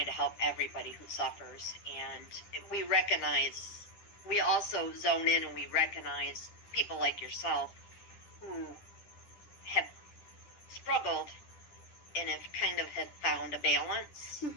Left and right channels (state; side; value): late; right; 10 ms